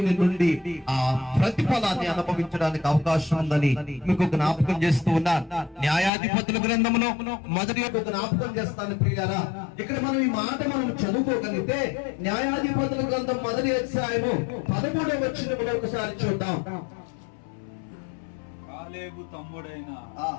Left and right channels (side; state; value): right; drops out; at 6.1 s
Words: నుండి ఆ ప్రతిఫలాన్ని అనుభవించడానికి అవకాశం ఉందని మీకు జ్ఞాపకం చేస్తూ ఉన్నాను. న్యాయాధిపతుల గ్రంథంలో మొదటి జ్ఞాపకం చేస్తాను ప్రియారా. ఇక్కడ మనం ఈ మాట మనం చదువుకోగలిగితే న్యాయాధిపతుల గ్రంథం మొదటి అధ్యాయము 13వ వచనములో ఒకసారి చూద్దాం. కాలేబు తమ్ముడైన